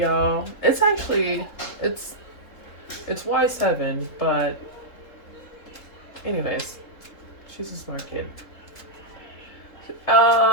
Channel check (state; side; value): late; right; 3.7 ms